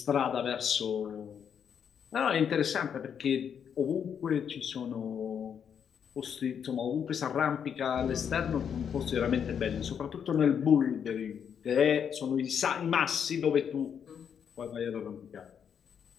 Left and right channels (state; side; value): quieter; right; 7.8 dB